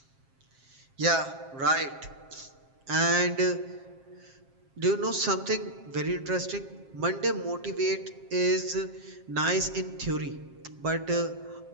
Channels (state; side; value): late; left; 7.5 ms